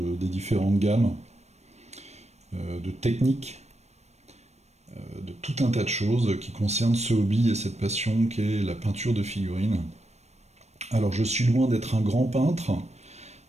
différentes gammes, de techniques, de tout un tas de choses qui concernent ce hobby et cette passion qu'est la peinture de figurines. Alors je suis loin d'être un grand peintre,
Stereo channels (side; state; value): left; late; 0.32 ms